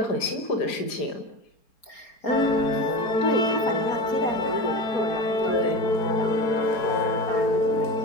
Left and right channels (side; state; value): right; late; 4.3 ms